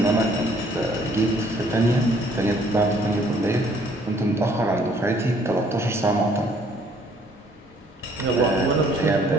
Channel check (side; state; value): both; normal; correlation 0.62